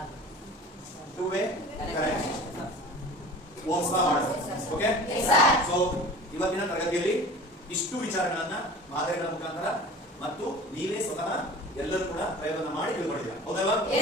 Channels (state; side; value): normal; both; correlation 0.40